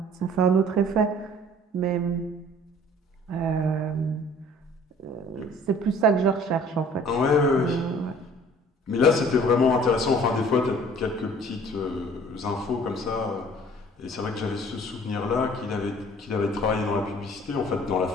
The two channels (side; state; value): both; normal; correlation 0.52